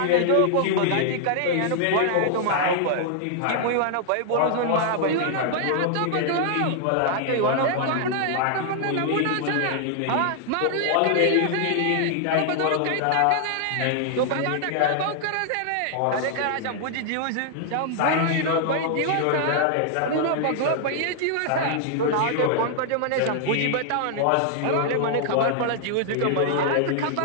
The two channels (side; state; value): both; different; correlation 0.00